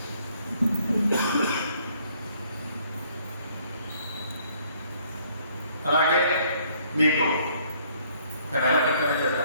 అలాగే మీకు ఒక నెల క్రితమే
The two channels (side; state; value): both; inverted; correlation -0.64